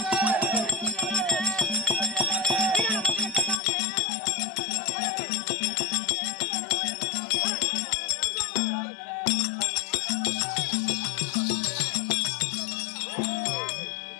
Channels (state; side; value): drops out; right; at 3.6 s